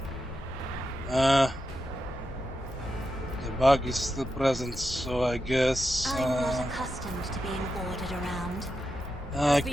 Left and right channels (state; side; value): normal; both; correlation 0.88